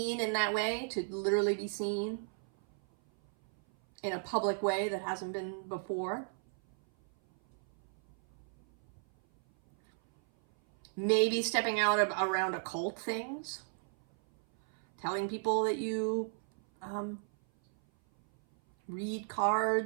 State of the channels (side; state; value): left; silent; 55 dB below the other